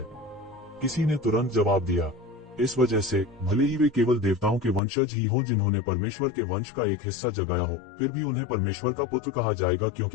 किसी ने तुरंत जवाब दिया, इस वजह से भले ही वे केवल देवताओं के वंशज ही हों जिन्होंने परमेश्वर के वंश का एक हिस्सा जगाया हो, फिर भी उन्हें परमेश्वर का पुत्र कहा जाएगा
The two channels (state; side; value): drops out; right; at 4.8 s